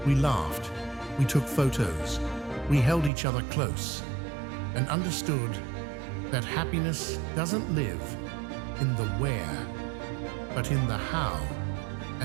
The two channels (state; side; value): drops out; left; at 3.1 s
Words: We laughed, we took photos, we held each other close, and understood that happiness doesn't live in the where, but in the how